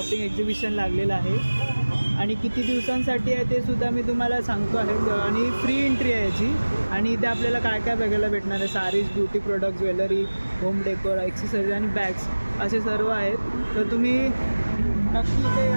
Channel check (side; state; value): both; inverted; correlation -1.00